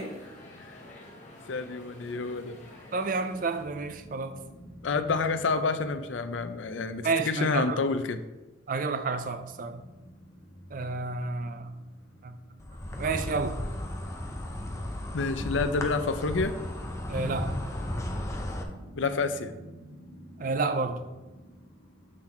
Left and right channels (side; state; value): both; normal; correlation 0.16